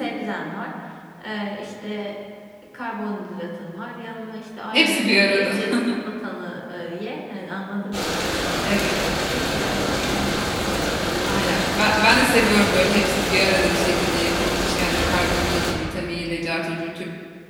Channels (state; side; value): identical; both; correlation 1.00